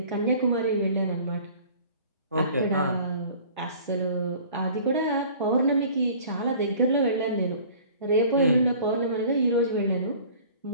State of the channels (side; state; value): both; inverted; correlation -0.48